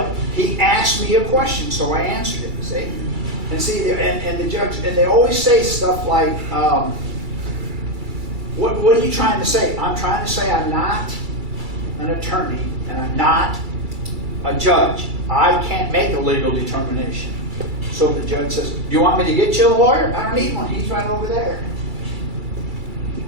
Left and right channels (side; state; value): left; late; 2.3 ms